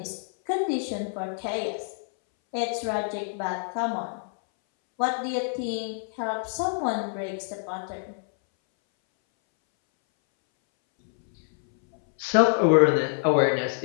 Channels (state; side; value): silent; right; 61 dB below the other